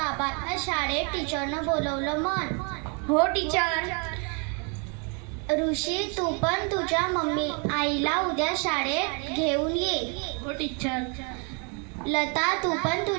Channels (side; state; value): left; quieter; 35.6 dB